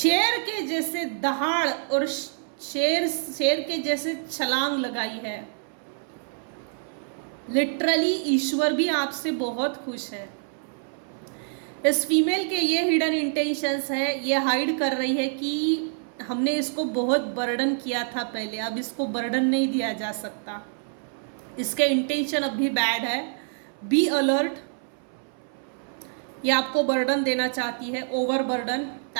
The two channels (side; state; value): left; silent; 61 dB below the other